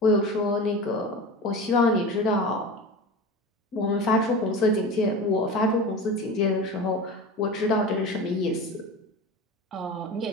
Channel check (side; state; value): both; normal; correlation 0.30